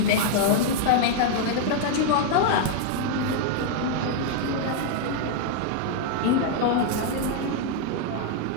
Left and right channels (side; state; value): both; different; correlation 0.00